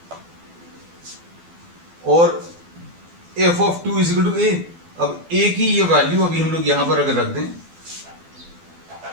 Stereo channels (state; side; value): late; left; 12 ms